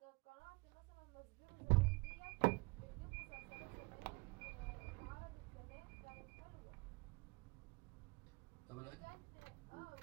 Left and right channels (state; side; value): quieter; left; 26.8 dB